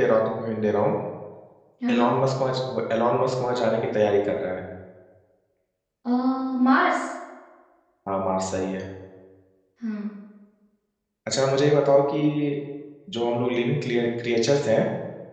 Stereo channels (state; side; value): identical; both; correlation 1.00